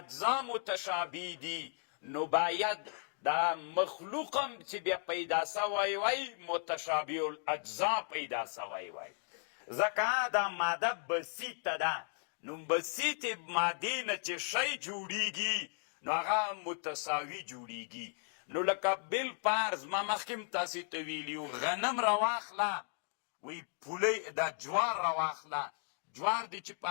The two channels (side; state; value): right; silent; 54 dB below the other